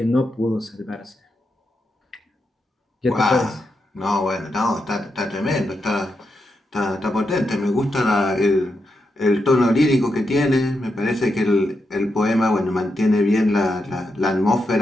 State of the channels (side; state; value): both; normal; correlation 0.85